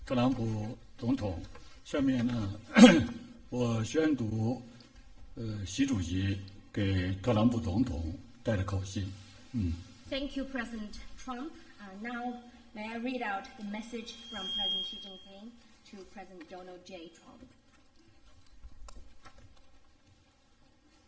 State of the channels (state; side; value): identical; both; correlation 1.00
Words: 特朗普总统。下面呢，我宣读习主席给特朗普总统带的口信。Thank you, President Trump. Now, may I read out the message from President Xi Jinping to President Donald J. Trump.